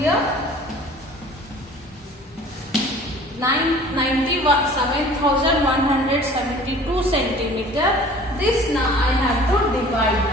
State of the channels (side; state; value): both; normal; correlation 0.47